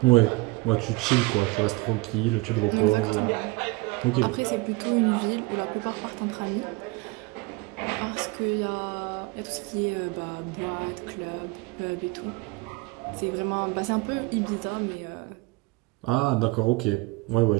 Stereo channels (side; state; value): left; quieter; 24.5 dB